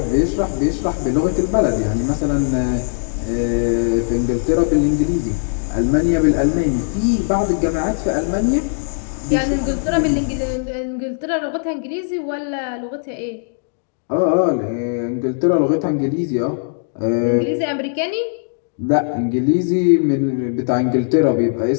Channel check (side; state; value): right; silent; digital silence